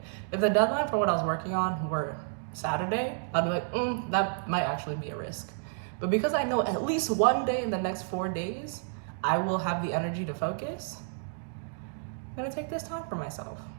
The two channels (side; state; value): left; silent; digital silence